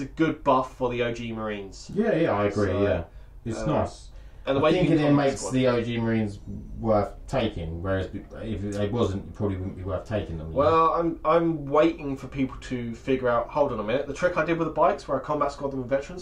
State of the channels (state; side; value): identical; both; correlation 1.00